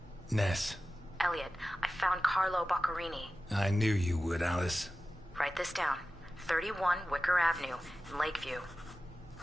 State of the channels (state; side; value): normal; both; correlation 0.95